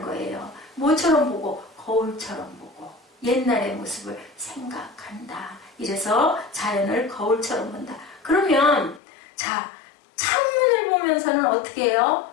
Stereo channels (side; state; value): right; drops out; at 9.0 s